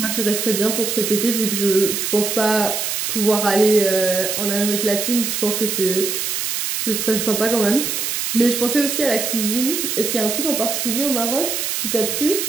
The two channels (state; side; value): noise; right; hiss, 1 dB below the sound